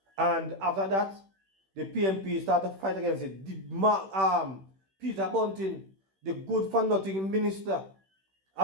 And after that, the PNP started to fight against it. Peter Bunting, the good for nothing minister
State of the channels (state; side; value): late; left; 16 ms